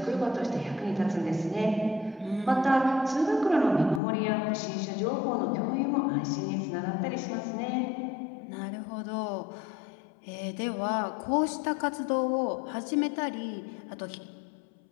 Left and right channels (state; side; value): drops out; right; at 4.0 s